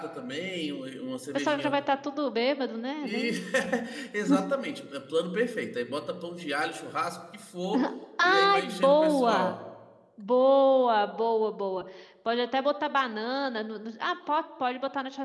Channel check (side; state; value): both; identical; correlation 1.00